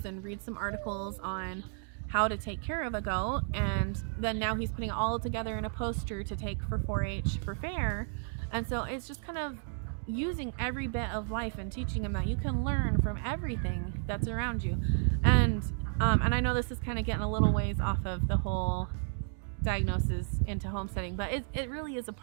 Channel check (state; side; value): silent; left; 56 dB below the other